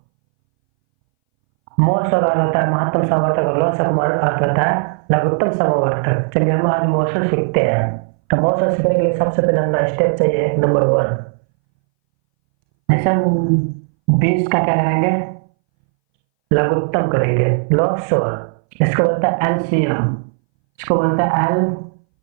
मोसो का अर्थ होता है महत्तम समवर्तक और लोसो का अर्थ होता है लघुत्तम समवर्तक। चलिए हम आज मोसो सीखते हैं। तो मोसो सीखने के लिए सबसे पहले हमें स्टेप चाहिए नंबर 1। जैसे हम 20 का क्या करेंगे, लघुत्तम करेंगे लोसो। इसको बोलता है एलसीएम, इसको बोलता है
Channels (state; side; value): silent; left; 63 dB below the other